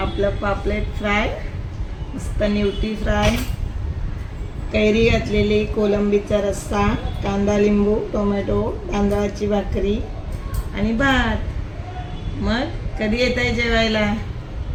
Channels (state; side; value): identical; both; correlation 1.00